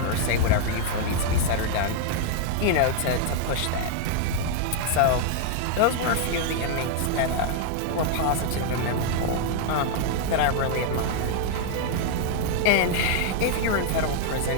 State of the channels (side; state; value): both; different; correlation 0.00